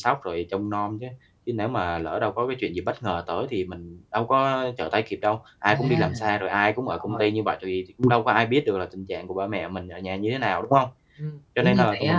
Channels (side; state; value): both; identical; correlation 1.00